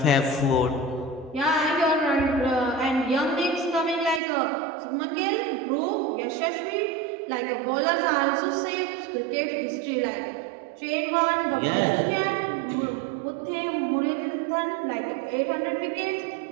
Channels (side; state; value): left; drops out; at 4.2 s